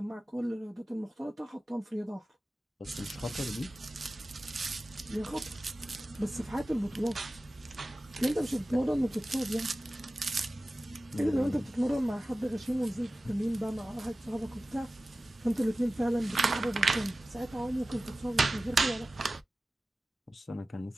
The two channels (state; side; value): normal; both; correlation 0.96